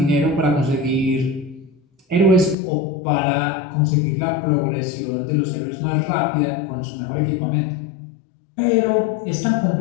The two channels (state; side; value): drops out; right; at 2.6 s